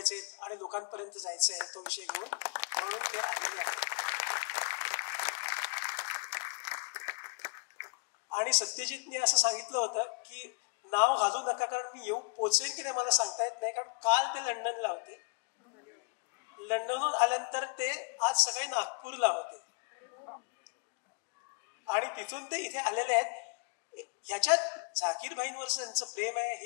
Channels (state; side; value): quieter; right; 33.7 dB